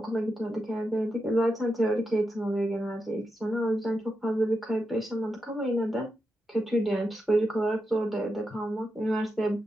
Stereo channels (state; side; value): normal; both; correlation 0.87